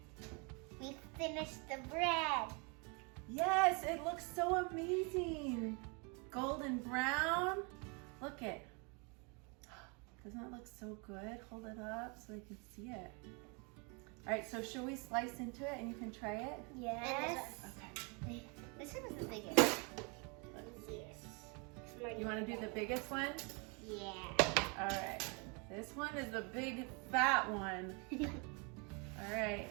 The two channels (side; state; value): left; quieter; 32.9 dB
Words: We finished the bread. Yes, it looks so amazing. Golden brown. Look it. Doesn't it look so good? Hold it up so they can see it. All right, so should we slice into it and you can try it? Yes. Okay. This one is the biggest. You want to do the biggest one? Yeah. All right. This one is the big fat one. All right.